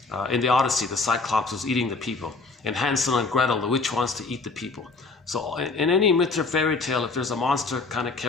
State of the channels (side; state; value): right; quieter; 3.9 dB